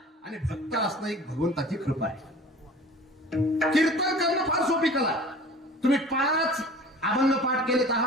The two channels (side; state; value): both; normal; correlation 0.43